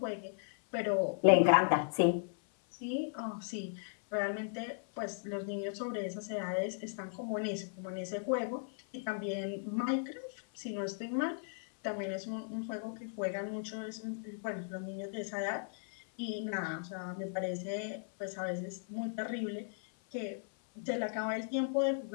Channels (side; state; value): right; silent; 53 dB below the other